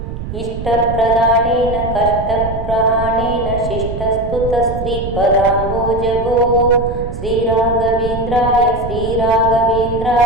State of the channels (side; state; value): right; noise; rumble, 8 dB below the sound